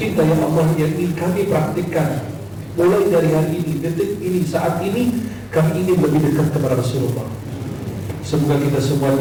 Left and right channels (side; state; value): left; noise; hum, 30 dB below the sound